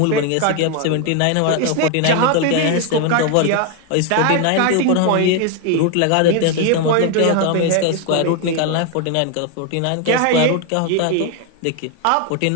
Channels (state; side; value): different; both; correlation 0.01